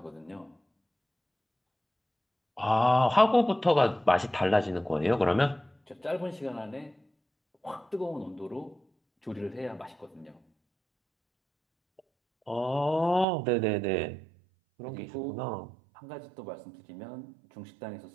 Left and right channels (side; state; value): left; drops out; at 13.2 s